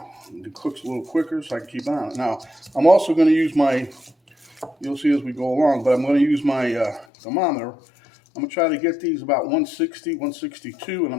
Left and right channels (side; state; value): right; drops out; at 7.1 s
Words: It cooks a little quicker so I can keep on it. Now, I'm also going to use you'll see as we go along, but I'm going to use my thermometer. I'm going to try to get these about 160, 162, and